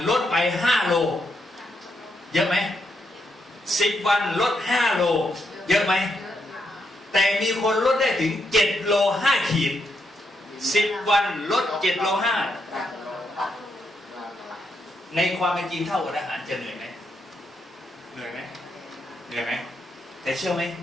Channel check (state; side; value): normal; both; correlation 0.80